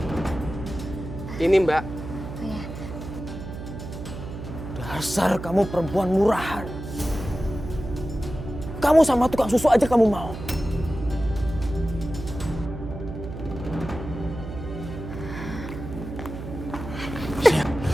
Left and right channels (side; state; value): right; noise; hum, 9 dB below the sound